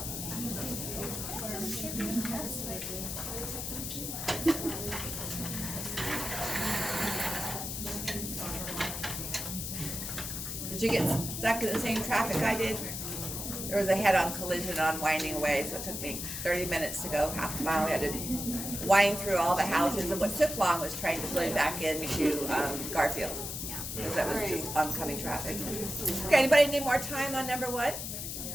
Did you get stuck in the same traffic I did? There was a head-on collision on Winding Way, so it took me 30 minutes to go half a mile. We had to wind through all the houses, and what took long was trying to pull back into Garfield, because that was just oncoming traffic. Okay, anybody need more time on number one?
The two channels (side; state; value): left; noise; hiss, 5 dB below the sound